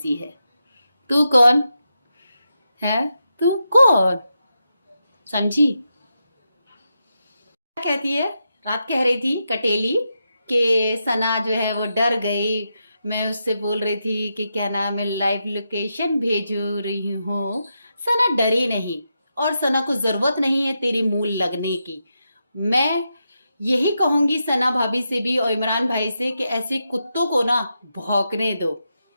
है। तू कौन है, तू कौन, समझी। क्या कहती है, रात कह रही थी कटेली कि सना जो है वो डर गई। मैं उससे बोल रही थी कि क्या नाम है, लाइव लोकेशन भेजू रही हूँ। सना डरी नहीं, और सना को जरूरत नहीं है तेरी मूल लगने की। मैं यही कहूंगी सना भाभी से भी और इमरान भाई से कि ऐसे कुत्तों को ना भौंकने दो।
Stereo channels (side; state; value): both; inverted; correlation -0.86